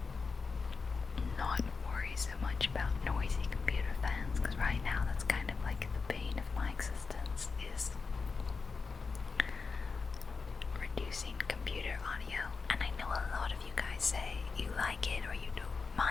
not worry so much about noisy computer fans, because right now that's kind of like the bane of my existence, is reducing computer audio. And I know a lot of you guys say you like it or you don't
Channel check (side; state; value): right; quieter; 4.7 dB